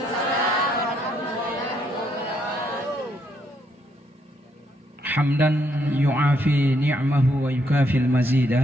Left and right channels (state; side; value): normal; both; correlation 0.74